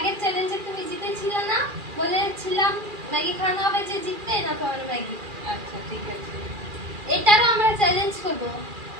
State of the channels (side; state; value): left; late; 2.4 ms